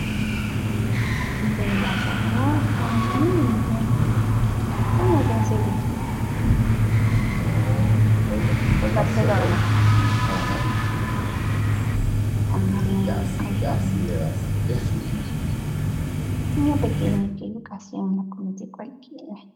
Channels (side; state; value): both; identical; correlation 1.00